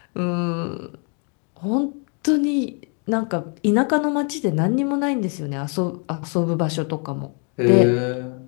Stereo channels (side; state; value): right; quieter; 38.9 dB